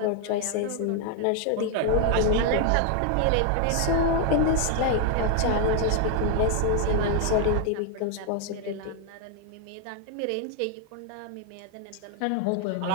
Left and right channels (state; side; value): different; both; correlation 0.00